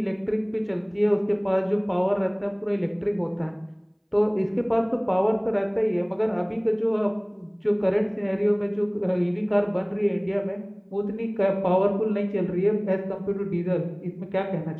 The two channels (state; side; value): identical; both; correlation 1.00